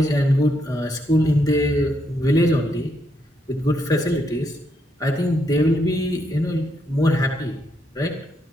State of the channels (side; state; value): both; normal; correlation 0.78